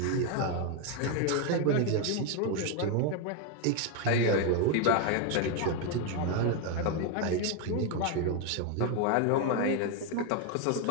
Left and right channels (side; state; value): both; different; correlation 0.01